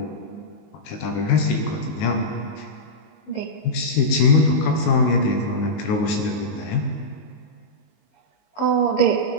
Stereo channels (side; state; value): right; late; 19 ms